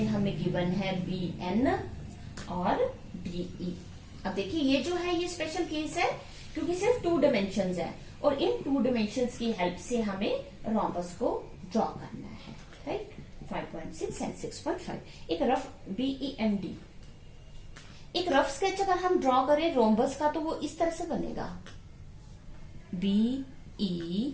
हमें गिवन है BN और DE। अब देखिए ये जो है ये स्पेशल केस है क्योंकि सिर्फ 2 डायमेंशंस है और इन 2 डायमेंशंस की हेल्प से हमें rhombus को ड्रॉ करना है, राइट। 5.6 एंड 6.5 एक रफ BEND, एक रफ स्केच अगर हम ड्रॉ करें रोम्बस का तो वो इस तरह से बनेगा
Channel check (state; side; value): identical; both; correlation 1.00